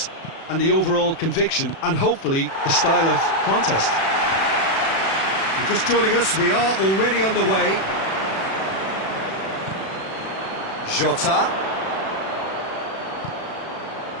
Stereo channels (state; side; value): late; right; 36 ms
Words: and the overall conviction, and hopefully the style of contest. You're just joining us, we are already underway. Jota.